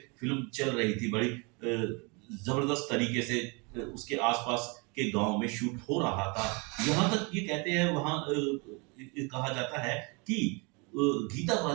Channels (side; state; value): left; quieter; 30.8 dB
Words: फिल्म चल रही थी। बड़ी जबरदस्त तरीके से उसके आसपास के गांव में शूट हो रहा था। यहाँ तक ये कहते हैं, वहां कहा जाता है कि गीता